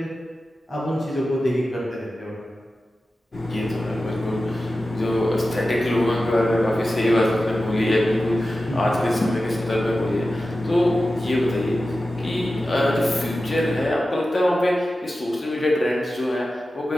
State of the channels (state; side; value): normal; both; correlation 0.93